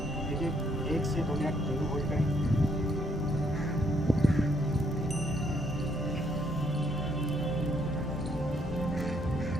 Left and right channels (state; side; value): normal; both; correlation 0.71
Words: देखिए 1 से 2 मिनट जरूर होल्ड करें।